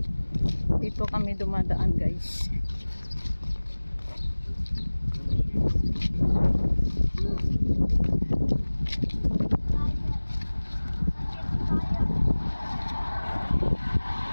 Dito kami dumadaan guys.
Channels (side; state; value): both; inverted; correlation -1.00